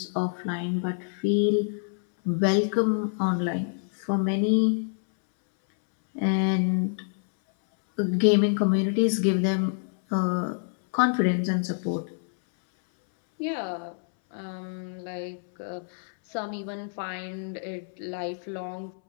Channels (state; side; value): silent; right; 60 dB below the other